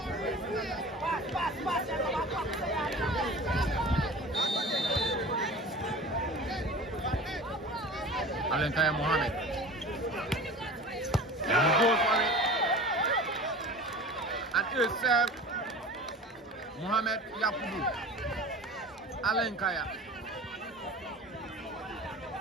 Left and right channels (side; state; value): both; normal; correlation 0.37